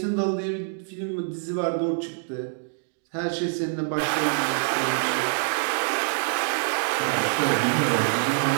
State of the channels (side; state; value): left; silent; digital silence